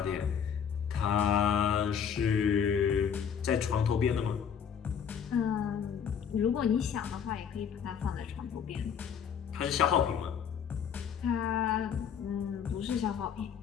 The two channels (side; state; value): right; quieter; 7.7 dB